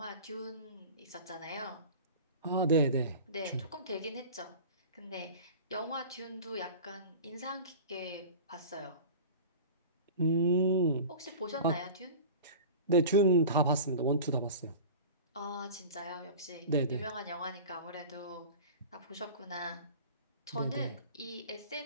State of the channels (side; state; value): both; inverted; correlation -0.36